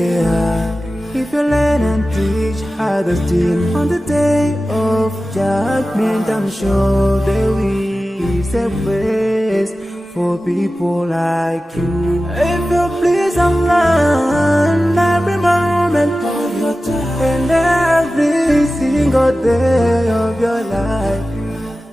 If you learn and teach others still, on the day of judgment, I'm sure there is a place for people like you. If you please Allah every moment of your time and every single day of your life,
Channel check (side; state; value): both; normal; correlation 0.95